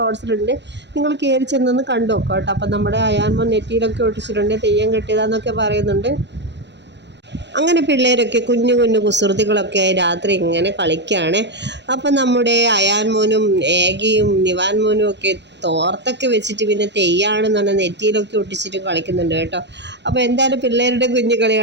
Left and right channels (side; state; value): left; late; 0.51 ms